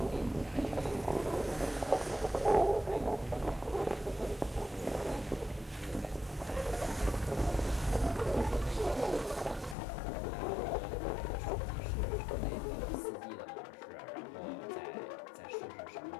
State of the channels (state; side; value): drops out; right; at 9.8 s